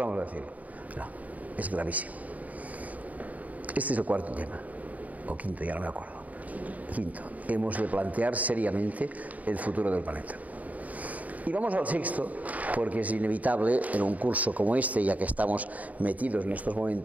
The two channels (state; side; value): late; left; 0.073 ms